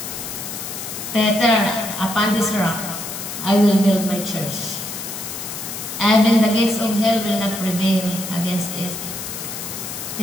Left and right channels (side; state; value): left; noise; hiss, 7 dB below the sound